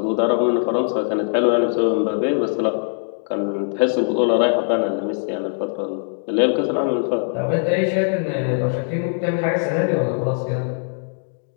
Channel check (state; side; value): silent; right; digital silence